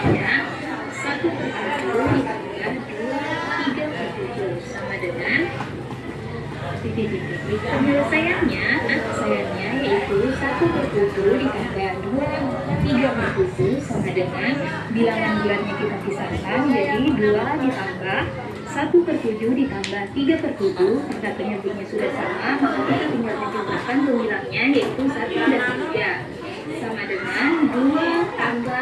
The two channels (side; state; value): both; identical; correlation 1.00